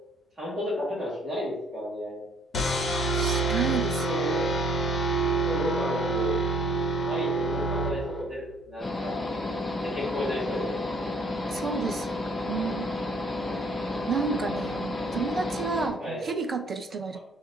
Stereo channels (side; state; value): both; normal; correlation 0.60